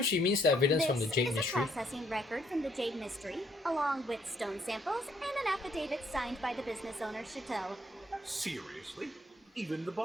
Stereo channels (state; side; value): normal; both; correlation 0.69